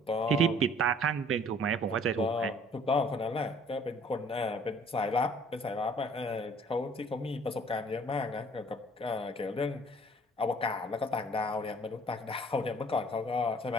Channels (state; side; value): normal; both; correlation 0.55